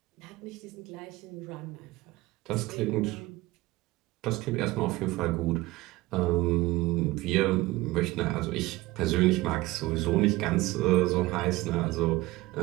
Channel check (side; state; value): left; quieter; 19.5 dB